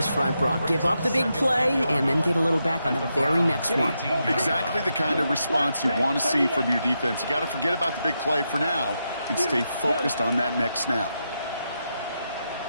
front, Brock. Give up the big play and then get a little back on the very next one. Exactly the kind of response you want to see from your defense. You got to forget about the big play for now and stay focused on that next snap.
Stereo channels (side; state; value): both; inverted; correlation -0.85